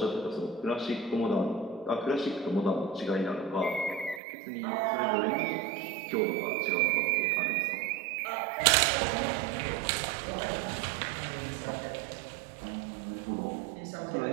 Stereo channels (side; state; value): left; drops out; at 4.2 s